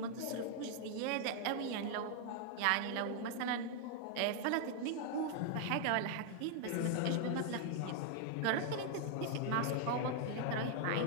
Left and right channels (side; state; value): both; different; correlation 0.00